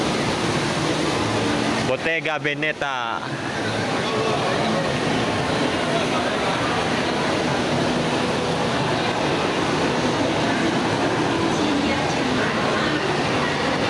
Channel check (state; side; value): identical; both; correlation 1.00